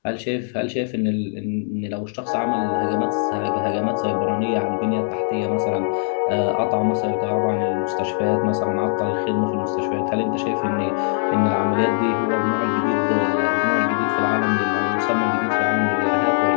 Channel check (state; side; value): silent; right; digital silence